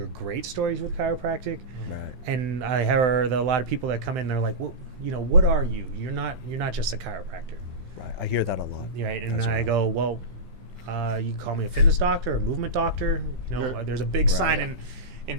great stories with chiropractic, Right. and I heard a lot of people that come in. They're like, well, what are you? You're not just a chiropractor, Right. I hear that a lot. right? And as I well. go, well, you can call me a fitness doctor or a movement doctor. There's a big Right. sign in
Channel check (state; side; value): late; left; 16 ms